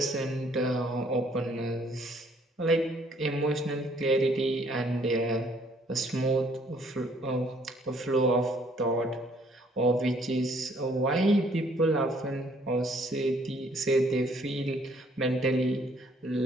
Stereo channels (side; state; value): both; normal; correlation 0.64